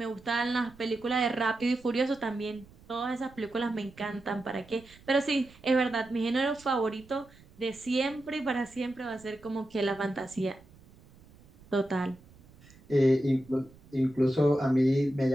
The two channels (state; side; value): noise; right; rumble, 25 dB below the sound